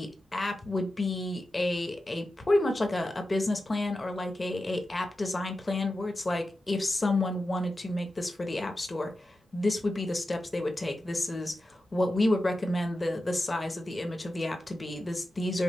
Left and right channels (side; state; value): both; normal; correlation 0.92